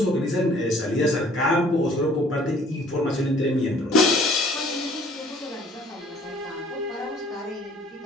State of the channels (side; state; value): both; normal; correlation 0.56